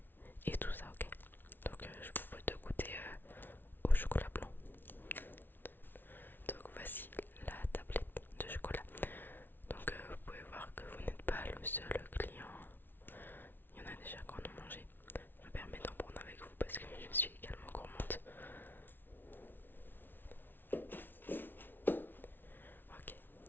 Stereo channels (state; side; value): late; right; 0.096 ms